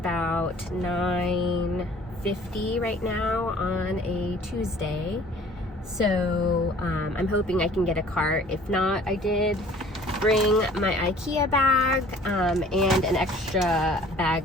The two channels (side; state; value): both; normal; correlation 0.51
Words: 9:50 right now on a Tuesday, so I'm hoping I can get a cart. If not, I did bring my IKEA bag and an extra bag